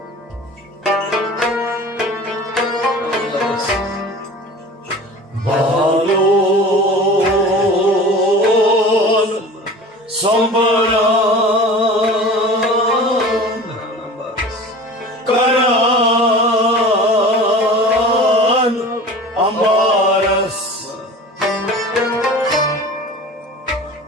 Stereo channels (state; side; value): normal; both; correlation 0.38